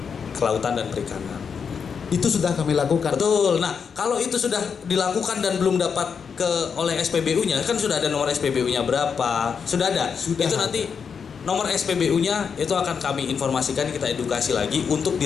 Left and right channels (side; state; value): right; quieter; 6.4 dB